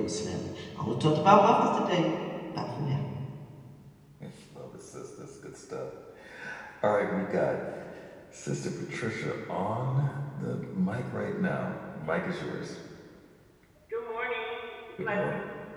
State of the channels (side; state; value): both; identical; correlation 1.00